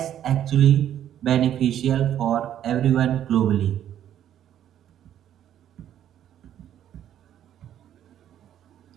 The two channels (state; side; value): quieter; left; 10.8 dB